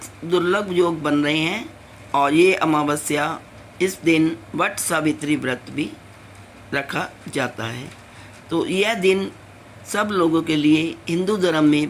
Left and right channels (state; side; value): identical; both; correlation 1.00